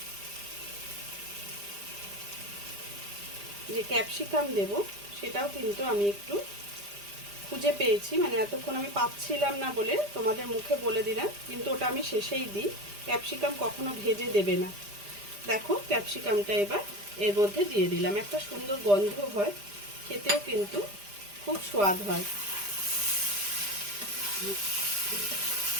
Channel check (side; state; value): left; late; 5.0 ms